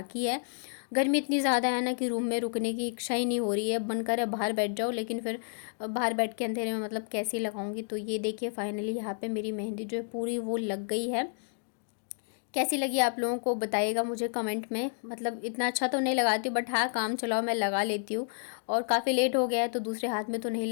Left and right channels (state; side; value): silent; right; digital silence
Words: है। गर्मी इतनी ज़्यादा है ना कि रूम में रुकने की इच्छा ही नहीं हो रही है, मन करे बाहर बैठ जाओ, लेकिन फिर बाहर बैठ के अंधेरे में मतलब कैसे लगाऊंगी। तो ये देखिए फाइनली यहाँ पे मेरी मेहंदी जो है पूरी वो लग गई है। कैसी लगी आप लोगों को बताइएगा मुझे कमेंट में। मतलब इतना अच्छा तो नहीं लगाती हूँ, बट हाँ काम चलाओ मैं लगा लेती हूँ। और काफ़ी लेट हो गया है तो दूसरे हाथ में तो नहीं